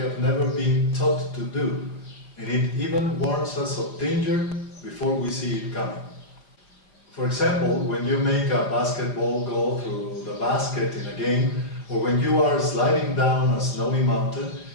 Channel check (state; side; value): late; right; 4.8 ms